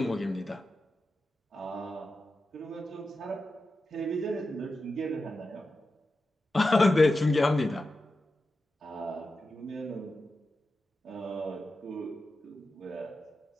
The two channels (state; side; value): normal; both; correlation 0.91